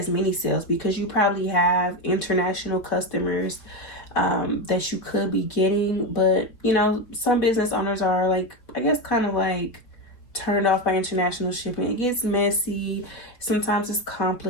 many sales, because you probably have international customers that you could be getting, but some business owners are like, I guess, kind of like turned off by international shipping. It gets messy, sometimes it's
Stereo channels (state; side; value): late; right; 4.3 ms